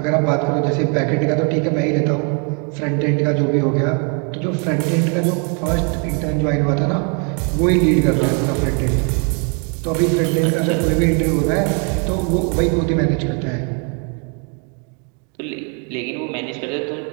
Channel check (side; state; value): left; quieter; 37.6 dB